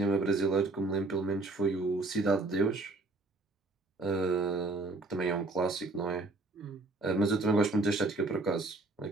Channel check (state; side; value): quieter; left; 3.1 dB